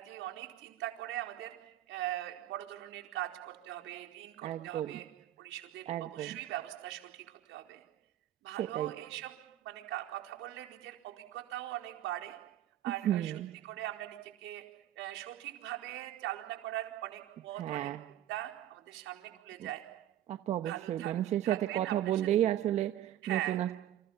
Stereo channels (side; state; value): left; quieter; 12.4 dB